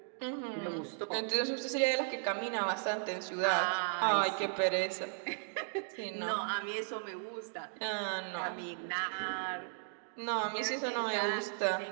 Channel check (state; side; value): silent; left; digital silence